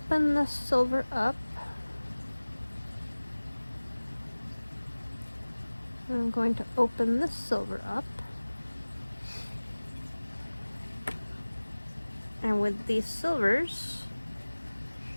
the silver up. I'm going to open this silver up. And with these silvers,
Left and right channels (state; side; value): inverted; both; correlation -1.00